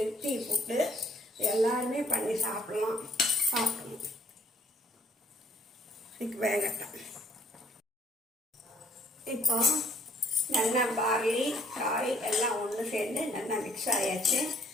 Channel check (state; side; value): normal; both; correlation 0.63